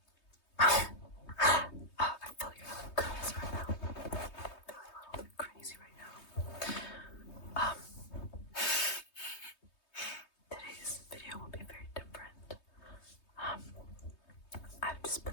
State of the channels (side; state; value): right; late; 3.2 ms